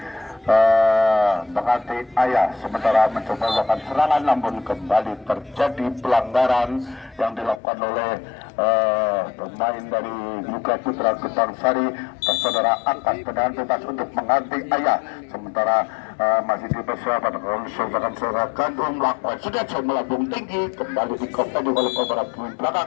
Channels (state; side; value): drops out; right; at 7.6 s